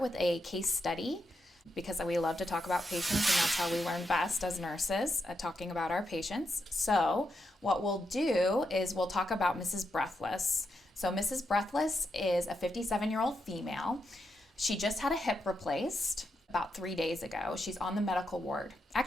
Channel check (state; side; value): normal; both; correlation 0.84